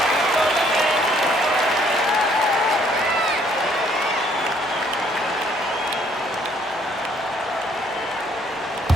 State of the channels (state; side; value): normal; both; correlation 0.64